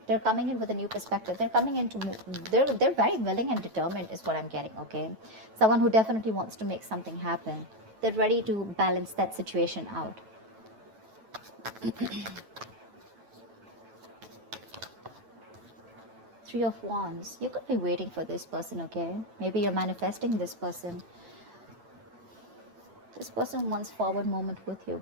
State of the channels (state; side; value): late; left; 9.2 ms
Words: They're coming in with a new perspective. They're coming in to... They're very willing and determined is what I'm getting, okay? Someone who definitely wants to make something happen. They're ready to balance that situation out. 3 of Wands. You could be waiting for this person, okay? Maybe you're manifesting this person. This person wants forward movement with you